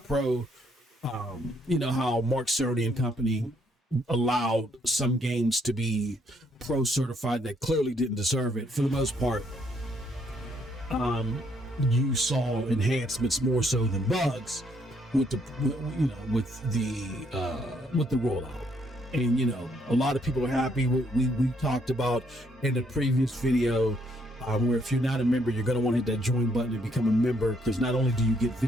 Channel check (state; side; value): normal; both; correlation 0.70